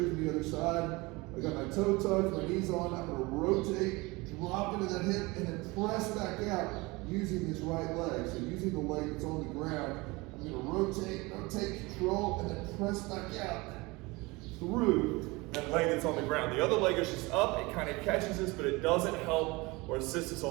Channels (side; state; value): left; quieter; 23.8 dB